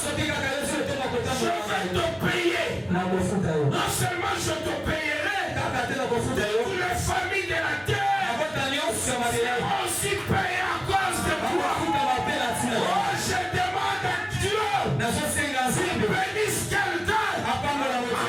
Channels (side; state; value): both; identical; correlation 1.00